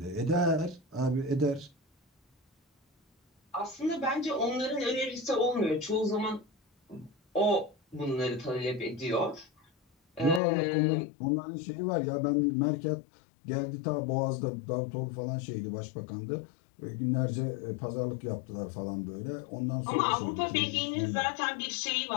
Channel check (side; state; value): right; drops out; at 10.4 s